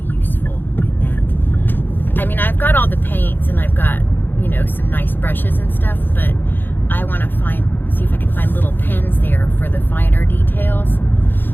useful in that. I mean, I've got all the paints and I've got, you know, some nice brushes and stuff, but I want to see if I can find little pens there for the finer details.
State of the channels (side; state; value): right; late; 0.095 ms